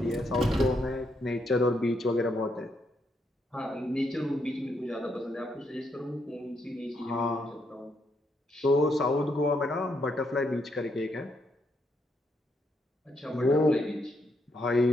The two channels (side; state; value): both; normal; correlation 0.77